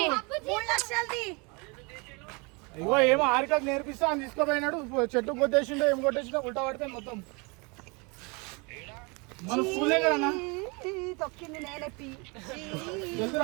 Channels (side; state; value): left; quieter; 29.8 dB